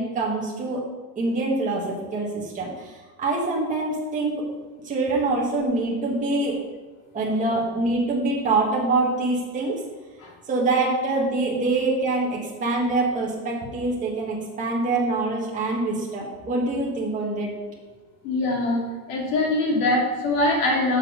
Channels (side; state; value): both; normal; correlation 0.20